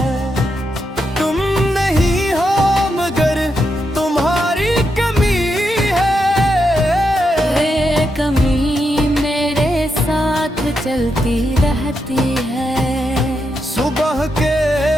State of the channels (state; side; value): normal; both; correlation 0.84